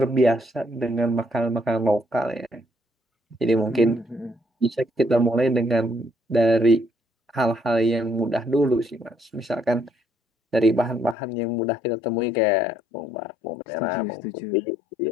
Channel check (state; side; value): drops out; right; at 11.2 s